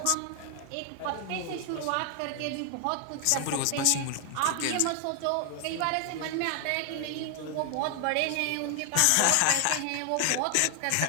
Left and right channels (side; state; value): both; different; correlation 0.00